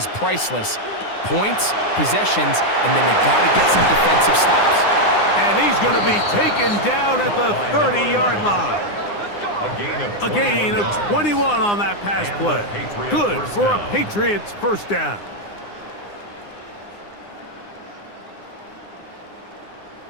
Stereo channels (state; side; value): late; right; 9.8 ms